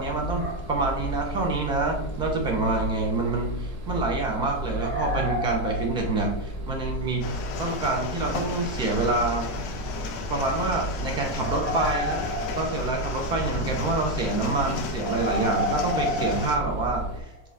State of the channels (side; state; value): right; late; 4.6 ms